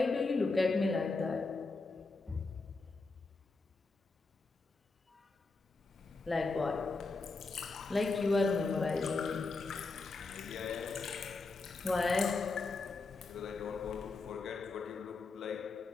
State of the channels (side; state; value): right; quieter; 3.8 dB